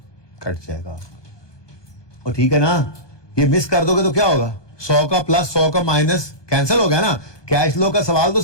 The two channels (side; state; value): right; late; 1.2 ms